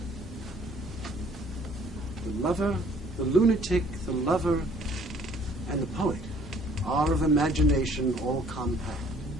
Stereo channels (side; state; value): both; normal; correlation 0.58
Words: The lover, the lunatic, the lover, and the poet are of imagination all compact.